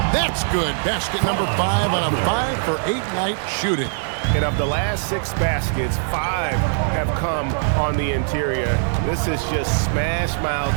That's good. Basket number 5 on a 5-for-8 night shooting. And of the last 6 baskets, 5 have come on the interior. This is just smash-mouth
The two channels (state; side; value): silent; left; digital silence